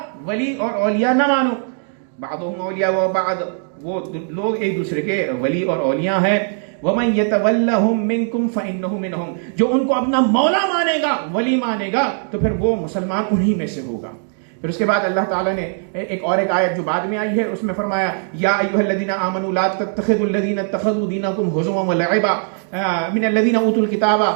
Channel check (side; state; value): left; silent; 58 dB below the other